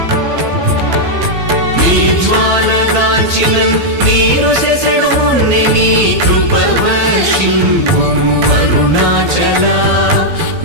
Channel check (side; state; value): left; late; 12 ms